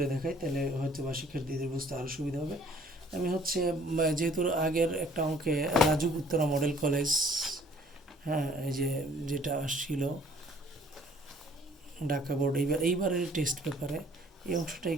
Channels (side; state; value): both; normal; correlation 0.57